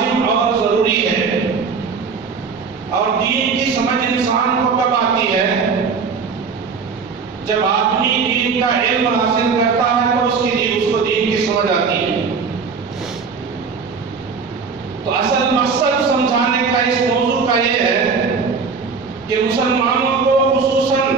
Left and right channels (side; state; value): left; quieter; 5.3 dB